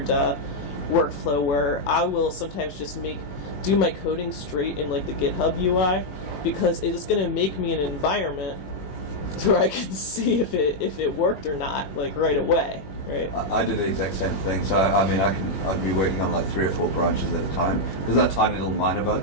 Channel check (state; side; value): late; right; 21 ms